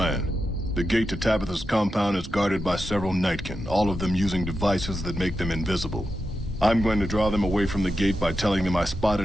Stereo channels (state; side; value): normal; both; correlation 0.89